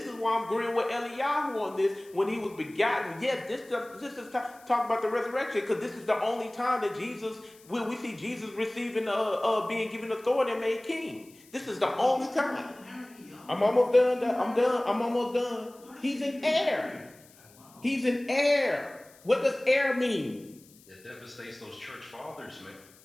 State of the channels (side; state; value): left; noise; hiss, 26 dB below the sound